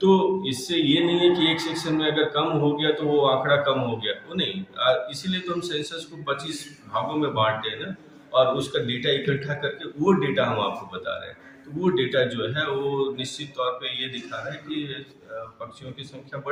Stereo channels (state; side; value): identical; both; correlation 1.00